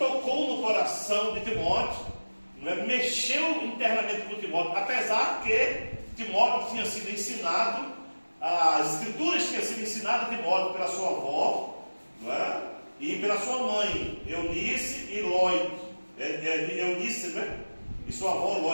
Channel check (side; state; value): both; inverted; correlation -1.00